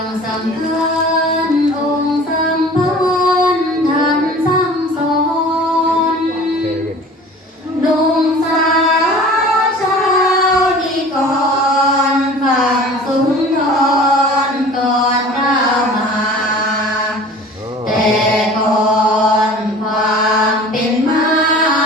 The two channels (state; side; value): normal; both; correlation 0.43